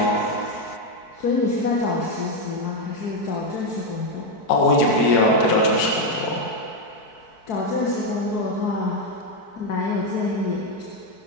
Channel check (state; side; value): late; right; 4.6 ms